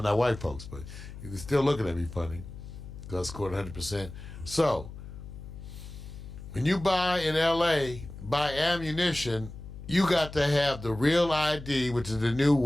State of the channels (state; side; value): noise; left; hum, 13 dB below the sound